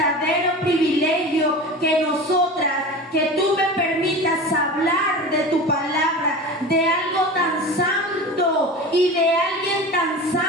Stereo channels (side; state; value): both; normal; correlation 0.32